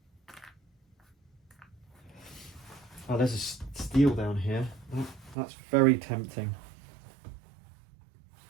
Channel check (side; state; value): left; drops out; at 5.4 s